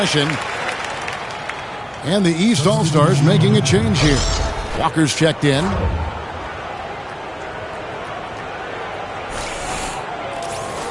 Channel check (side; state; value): both; identical; correlation 1.00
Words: And the East All-Stars making a change here. Walker's checked in.